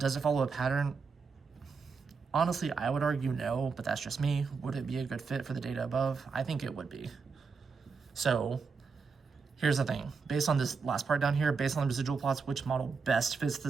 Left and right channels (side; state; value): left; quieter; 5.1 dB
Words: it follow a pattern? Honestly, I would argue no, but that's just me. Would it be a good fit for the data above? I think it would be. So here's the thing. Based on this last part down here, based on the residual plots, which model best fits